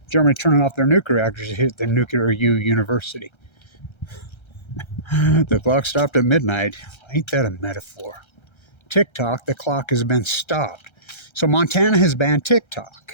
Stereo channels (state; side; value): late; right; 1.3 ms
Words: Germany turning off their nuclear reactors to hit the Nuclear University. The clock stopped at midnight. Ain't that a metaphor? TikTok, the clock has been stopped. So Montana has banned